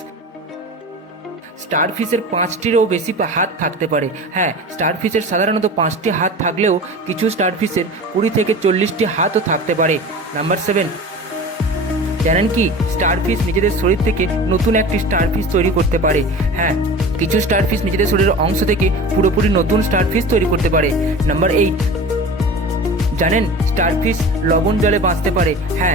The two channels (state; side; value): normal; both; correlation 0.35